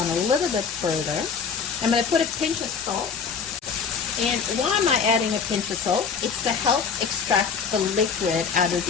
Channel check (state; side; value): quieter; right; 6.0 dB